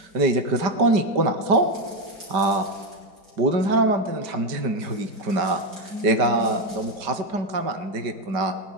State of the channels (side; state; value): left; late; 5.1 ms